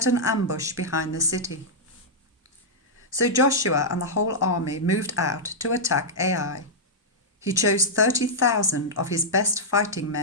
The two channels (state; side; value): normal; both; correlation -0.08